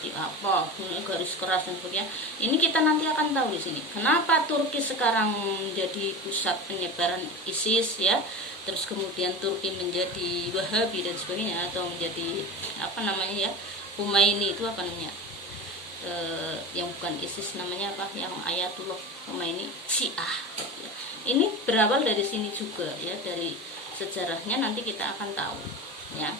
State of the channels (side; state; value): both; normal; correlation 0.28